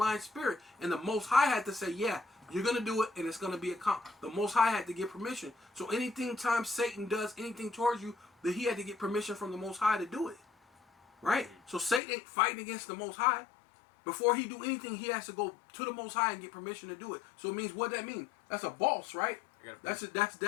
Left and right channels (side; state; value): right; drops out; at 12.0 s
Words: spirit." And the Most High had to say, "Yeah, you're gonna do it, and it's gonna be the Most High had to get permission." So time Satan does anything towards you, that he had to get permission from the Most High to do it. Right? So Satan ain't fighting against the Most High. Before he do anything, he has to go to the Most High and get permission to do it. So it means, what that mean? That's a boss, right? That's